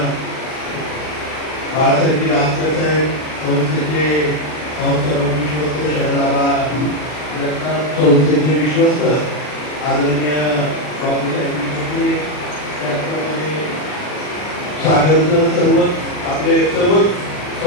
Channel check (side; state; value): right; late; 40 ms